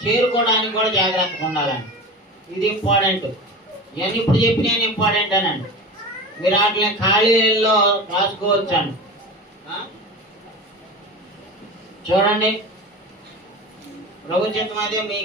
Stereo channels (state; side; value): normal; both; correlation 0.30